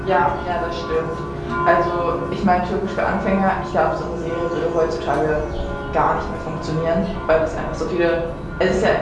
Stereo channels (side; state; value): both; identical; correlation 1.00